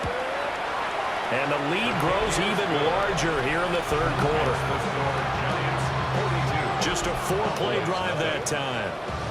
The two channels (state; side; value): identical; both; correlation 1.00